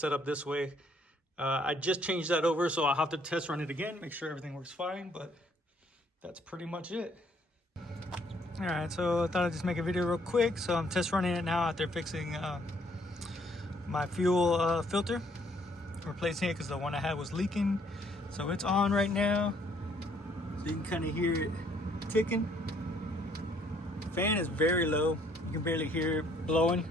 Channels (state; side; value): normal; both; correlation 0.65